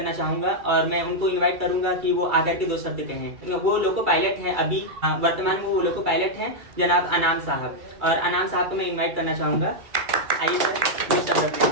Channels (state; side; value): late; left; 2.3 ms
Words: चाहूँगा और मैं उनको इनवाइट करूँगा कि वो आकर के 2 शब्द कहें। वो लोको पायलट हैं, अभी वर्तमान में वो लोको पायलट हैं, जनाब अनाम साहब। और अनाम साहब को मैं इन्वाइट करना चाहूँगा। आइए सर, 2 शब्द